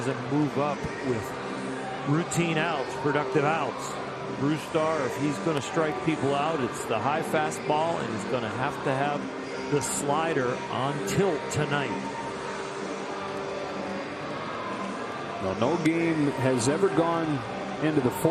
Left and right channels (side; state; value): both; identical; correlation 1.00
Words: move up with routine outs, productive outs. Brustar, if he's going to strike people out, it's the high fastball, and he's going to have the slider on tilt tonight. Well, no game has ever gone into the